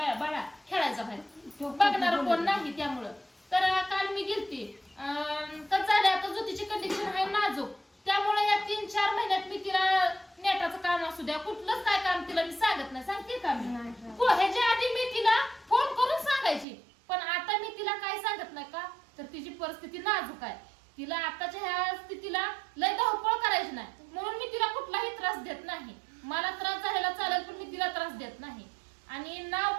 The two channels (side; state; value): left; drops out; at 16.7 s